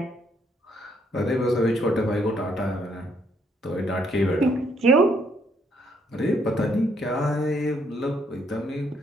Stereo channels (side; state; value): both; normal; correlation 0.70